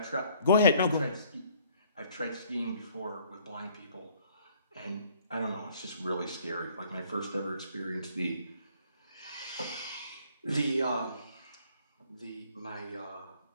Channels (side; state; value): both; inverted; correlation -0.60